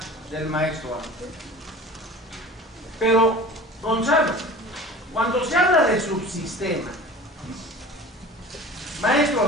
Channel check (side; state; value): both; normal; correlation 0.39